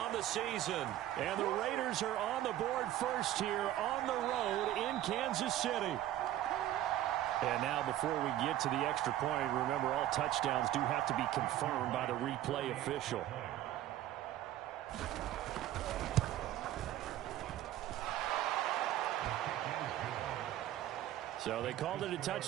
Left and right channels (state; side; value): quieter; left; 13.2 dB